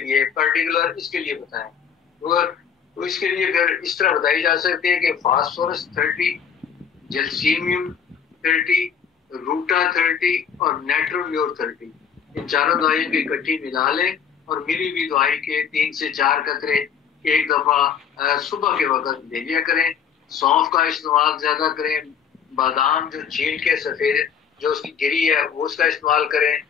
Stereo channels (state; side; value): quieter; right; 7.4 dB